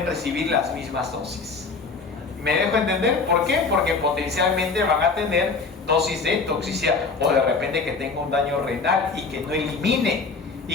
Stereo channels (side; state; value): right; quieter; 4.4 dB